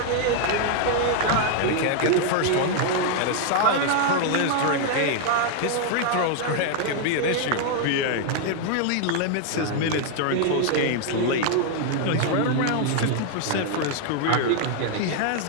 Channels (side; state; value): both; different; correlation 0.00